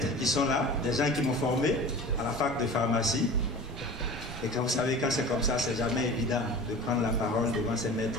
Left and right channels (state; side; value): normal; both; correlation 0.37